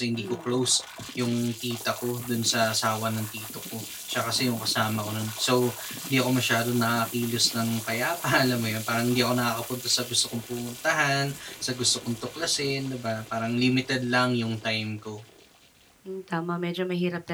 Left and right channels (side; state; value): both; identical; correlation 1.00